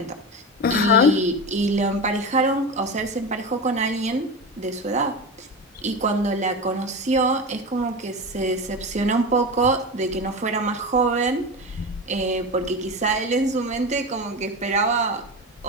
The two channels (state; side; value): normal; both; correlation 0.23